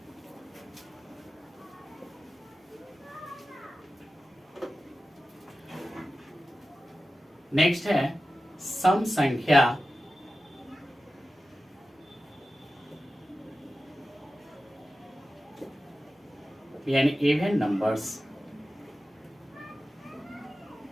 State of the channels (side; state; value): both; normal; correlation 0.94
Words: नेक्स्ट है सम संख्या यानी इवन नंबर्स।